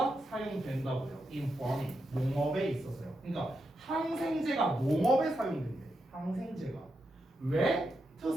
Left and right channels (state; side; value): normal; both; correlation 0.85